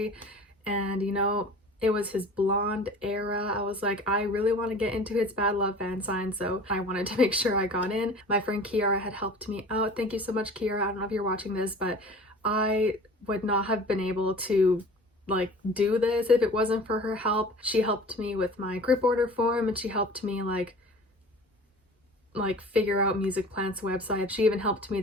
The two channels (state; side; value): normal; both; correlation 0.42